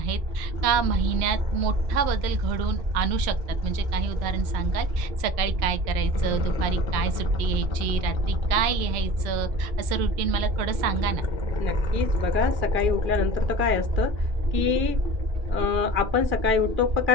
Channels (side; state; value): left; late; 3.1 ms